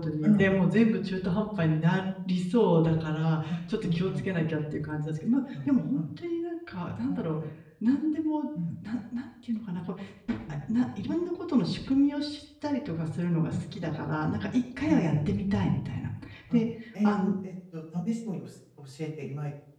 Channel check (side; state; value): both; identical; correlation 1.00